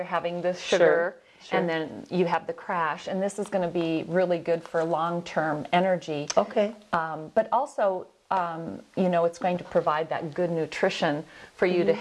having the sugar. And then you have the crash, and this is going to be really good for long-term energy. Okay. But also, you know, it's going to provide that good nutrition for you to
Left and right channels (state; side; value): identical; both; correlation 1.00